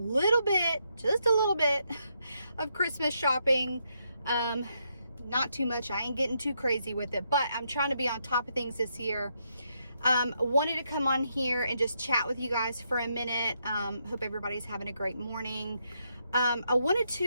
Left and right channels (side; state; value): both; inverted; correlation -0.79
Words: little bit of Christmas shopping. Not too much. I ain't getting too crazy with it, but I'm trying to be on top of things this year. Wanted to come on here and just chat with you guys for a minute. Hope everybody's having a great morning. I wanted